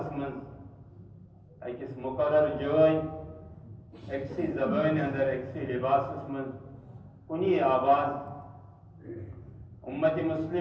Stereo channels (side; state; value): both; identical; correlation 1.00